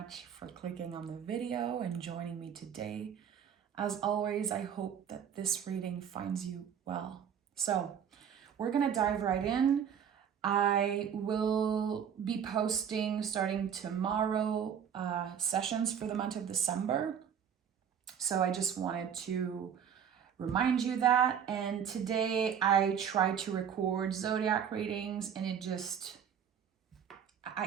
for clicking on the video and joining me today. As always, I hope that this reading finds you well. So we're gonna dive right in. I will be posting starting tomorrow sessions for the month of December. So I just wanted to remind you that. And today I tried to record zodiac readings and I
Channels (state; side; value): quieter; left; 8.2 dB